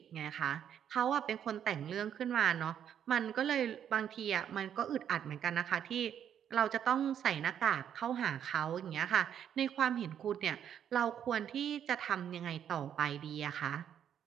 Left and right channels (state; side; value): quieter; left; 9.3 dB